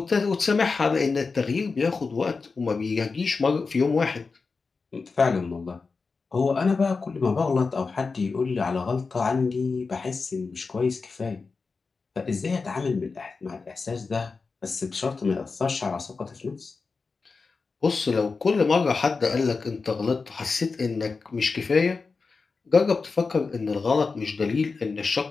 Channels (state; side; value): quieter; right; 4.5 dB